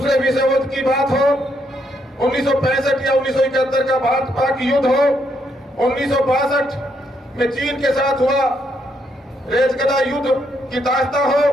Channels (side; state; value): both; normal; correlation 0.75